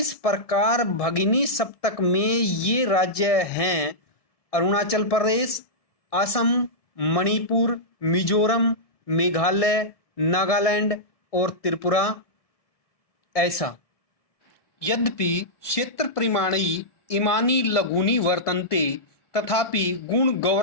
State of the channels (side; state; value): right; late; 1.6 ms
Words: प्रकार भगिनी सप्तक में ये राज्य हैं अरुणाचल प्रदेश, असम, मणिपुर, मिजोरम, मेघालय, नागालैंड और त्रिपुरा ऐसा। यद्यपि क्षेत्र परिमाणी इमानी लघूनि वर्तन्ते तथापि गुण